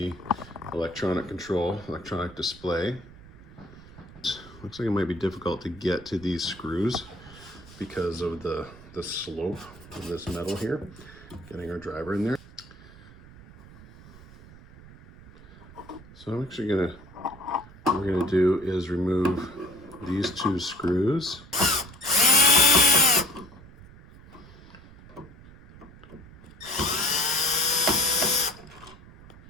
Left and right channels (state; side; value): noise; right; rumble, 20 dB below the sound